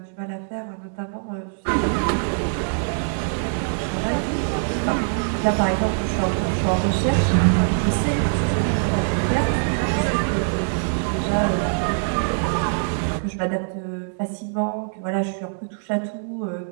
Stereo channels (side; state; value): left; silent; digital silence